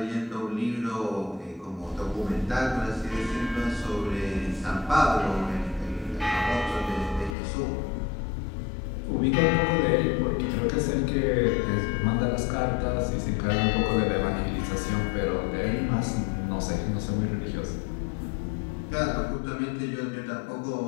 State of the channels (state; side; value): drops out; right; at 7.4 s